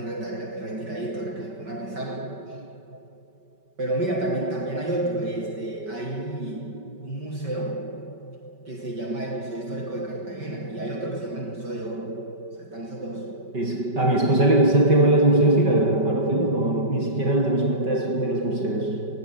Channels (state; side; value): late; left; 5.2 ms